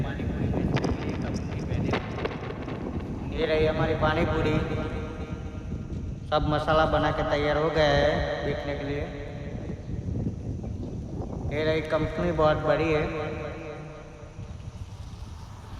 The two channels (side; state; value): both; identical; correlation 1.00